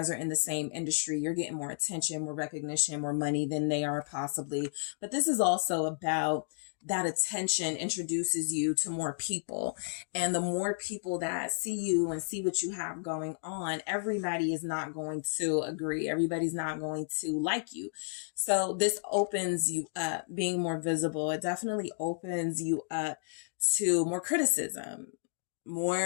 are in the same industry, you're getting more attention, more recognition, more money than they are possibly. But this is also about that attention introduces you to more people. And the more people that see you and see what you have going on, everybody is not going to agree. Everybody's not going to like you. So this opens you up, being more visible. It definitely opens you up to more criticism,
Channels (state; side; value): silent; right; digital silence